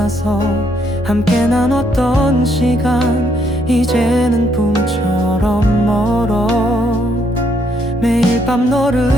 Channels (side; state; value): both; normal; correlation 0.72